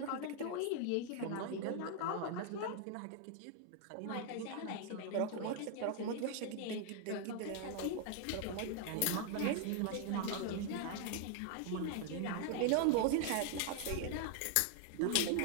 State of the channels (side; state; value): both; different; correlation 0.00